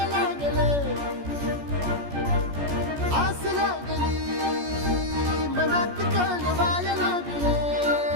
लागलं आस लागली मनात कळवायला लागलं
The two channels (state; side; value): late; left; 14 ms